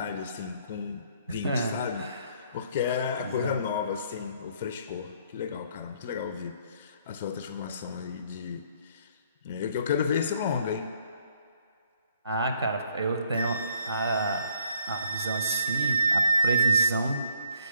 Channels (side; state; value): both; inverted; correlation -0.66